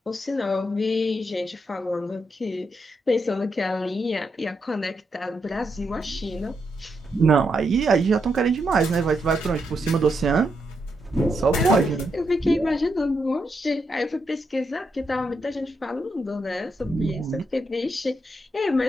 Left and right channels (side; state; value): both; normal; correlation 0.82